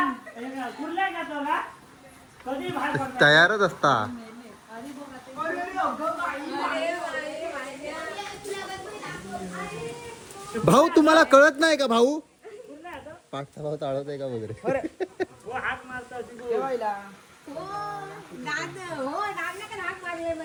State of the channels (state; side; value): identical; both; correlation 1.00